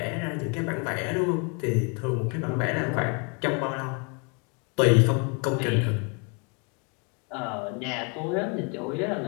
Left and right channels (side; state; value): right; quieter; 33.0 dB